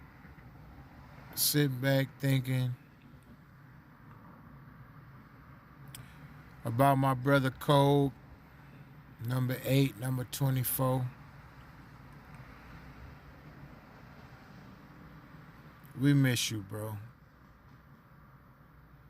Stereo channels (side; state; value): both; identical; correlation 1.00